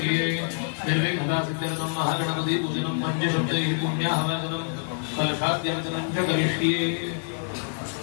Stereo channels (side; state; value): right; silent; 61 dB below the other